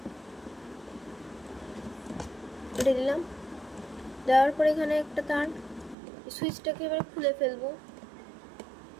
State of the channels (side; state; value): left; drops out; at 6.0 s